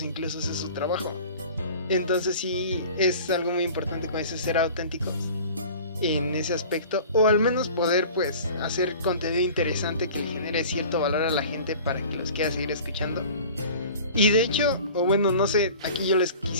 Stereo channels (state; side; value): inverted; both; correlation -0.42